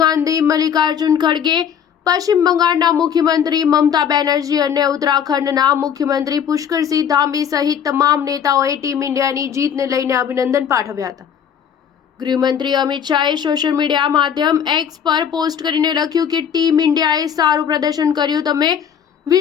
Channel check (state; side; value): quieter; right; 8.2 dB